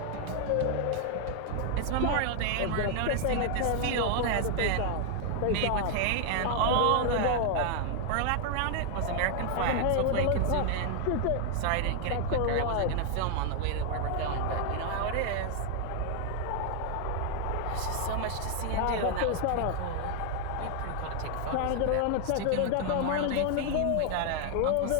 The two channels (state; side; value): different; both; correlation 0.00